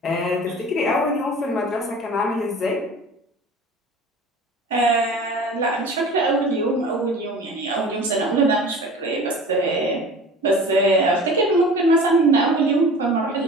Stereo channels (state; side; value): normal; both; correlation 0.40